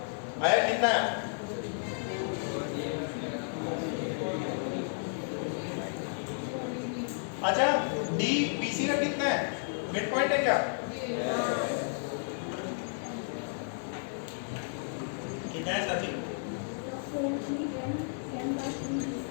आया कितना है? अच्छा, डी बीसी का कितना है? मिड पॉइंट है क्या? कितना है साथी?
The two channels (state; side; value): silent; right; 56 dB below the other